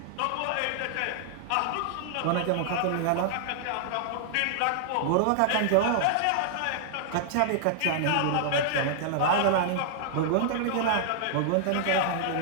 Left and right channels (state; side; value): different; both; correlation -0.01